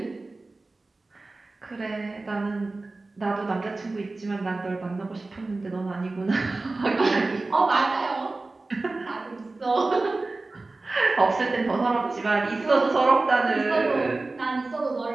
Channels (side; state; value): left; quieter; 3.3 dB